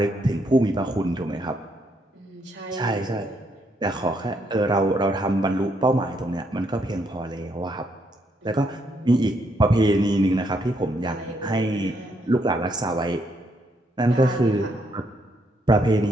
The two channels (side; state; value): both; normal; correlation 0.74